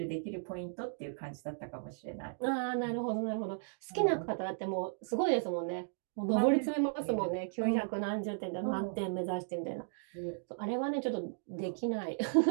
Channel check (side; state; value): left; silent; digital silence